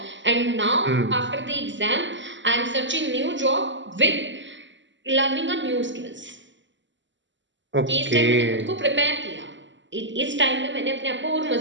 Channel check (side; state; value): left; late; 0.54 ms